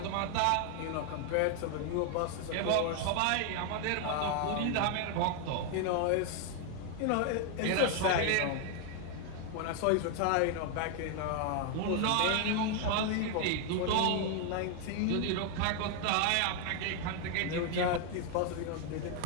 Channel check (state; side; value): different; both; correlation 0.01